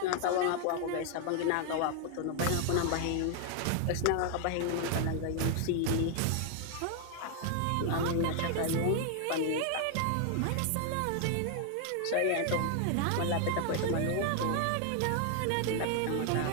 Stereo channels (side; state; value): both; different; correlation 0.00